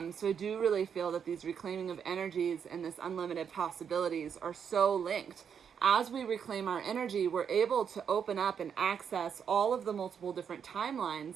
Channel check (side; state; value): left; quieter; 7.5 dB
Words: I do really feel that these reclaiming of energies and this unlimited possibilities are so linked. As we reclaim our energy, we're able to open up and access all of the multiple different